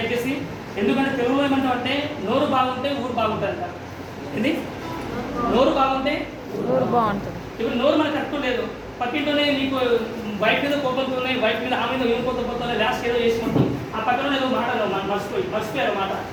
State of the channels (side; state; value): both; identical; correlation 1.00